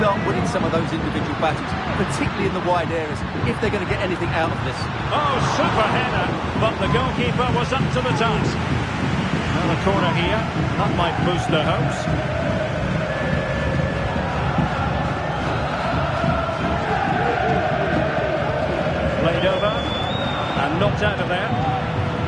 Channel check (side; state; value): both; identical; correlation 1.00